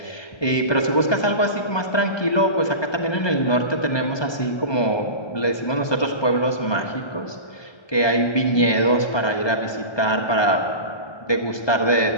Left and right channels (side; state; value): right; late; 1.2 ms